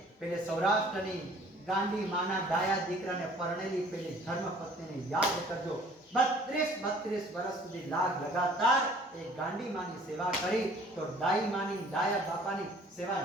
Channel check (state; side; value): normal; both; correlation 0.53